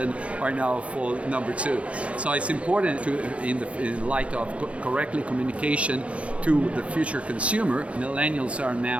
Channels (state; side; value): late; left; 0.062 ms